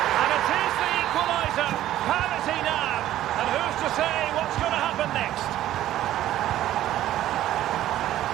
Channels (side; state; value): left; quieter; 13.3 dB